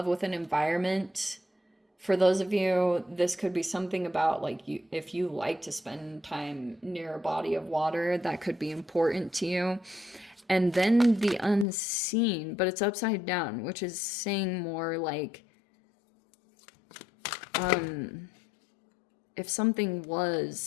with an environment. For those of you, this could be something about like you, if you like to spend time near a body of water, that could be important to you. And then the unseen, but it's upside down, which is saying more like, if something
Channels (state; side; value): drops out; right; at 11.7 s